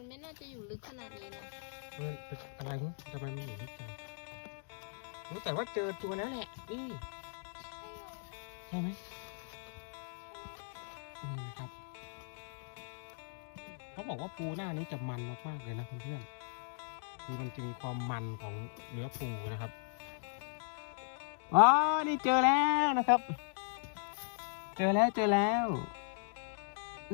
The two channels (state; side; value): silent; right; digital silence